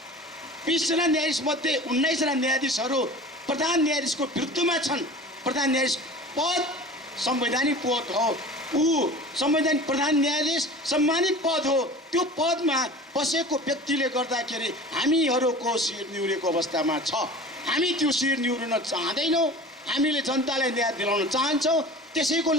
20 जना न्यायाधीश मध्ये 19 जना न्यायाधीशहरू प्रधान न्यायाधीशको विरुद्धमा छन्। प्रधान न्यायाधीश पद संवैधानिक पद हो, ऊ संवैधानिक प्रधान न्यायाधीश सम्मानित पद हो। त्यो पदमा बसेको व्यक्तिले गर्दाखेरि हामीहरूको शिर निहुरेको अवस्थामा छ। हामी त्यो शिर निहुर्न चाहँदैनौँ, हामीले जनतालाई न्याय दिलाउन चाहन्छौँ। त्यसैको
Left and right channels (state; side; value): normal; both; correlation 0.39